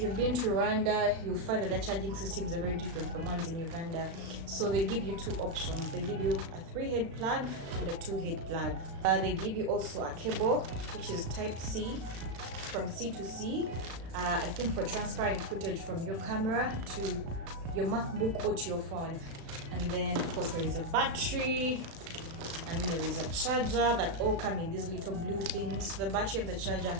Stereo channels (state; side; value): late; left; 36 ms